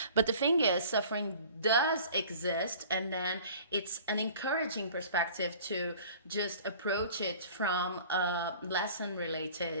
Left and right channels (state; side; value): inverted; both; correlation -0.46